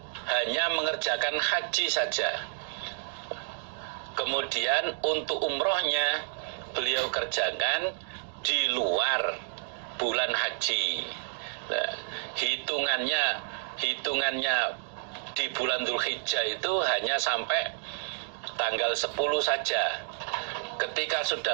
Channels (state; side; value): silent; left; digital silence